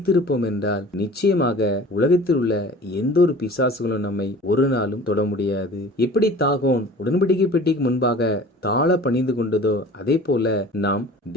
என்றால் நிச்சயமாக உலகத்தில் உள்ள எந்த ஒரு பிசாசுகளும் நம்மை ஒரு நாளும் தொட முடியாது. எப்படி தாகோன் உடன்படிக்கை பெட்டிக்கு முன்பாக தாழ பணிந்து கொண்டதோ அதே போல நாம்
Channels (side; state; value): both; normal; correlation 0.43